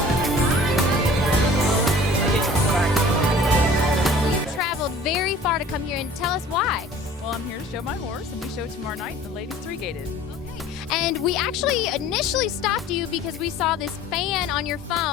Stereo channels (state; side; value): normal; both; correlation 0.47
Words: Very far to come here, and tell us why. Well, I'm here to show my horse, and we show tomorrow night the ladies 3-gated. Okay. And we actually initially stopped you because we saw this fan on your